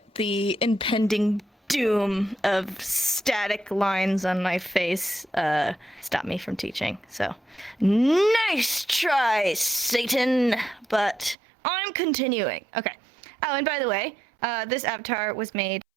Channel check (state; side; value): drops out; left; at 11.4 s